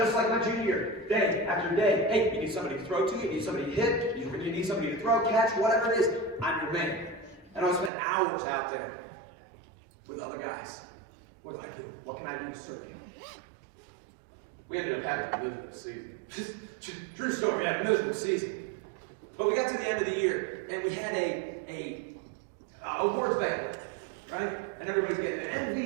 like my junior year, day after day. Hey, you need somebody to throw to, you need somebody to hit, you need somebody to throw, catch, whatever it is. I'm your man. And I spent hours out there with other guys. What do I do? What can I do to serve you? We ended up having a miserable season. True story, we had a miserable season. But we got to the end of the year, and we had a awards banquet, right? And everybody's getting an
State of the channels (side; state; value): left; drops out; at 7.9 s